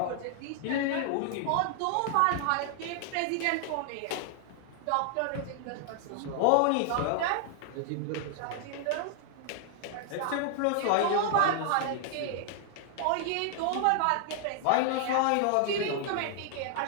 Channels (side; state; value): both; different; correlation 0.00